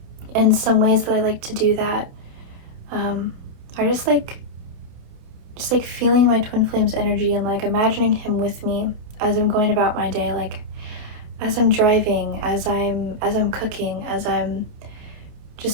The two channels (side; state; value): left; late; 29 ms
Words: And some ways that I like to do that are just like feeling my twin flame's energy and like imagining him with me as I'm going about my day, like as I'm driving, as I'm cooking, as I'm